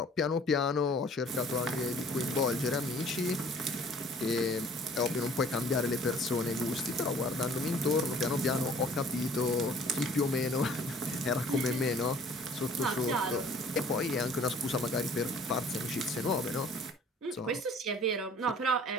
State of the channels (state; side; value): normal; both; correlation 0.53